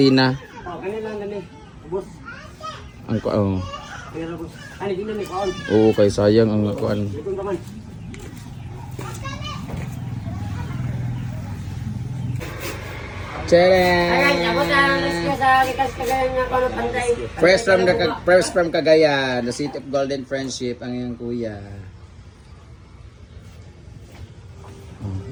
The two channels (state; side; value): identical; both; correlation 1.00